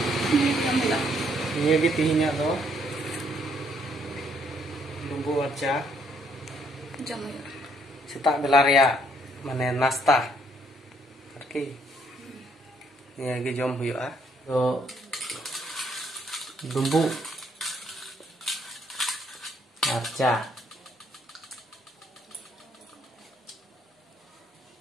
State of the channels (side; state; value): both; normal; correlation 0.69